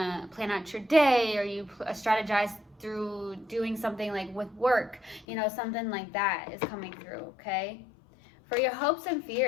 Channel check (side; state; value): right; drops out; at 5.2 s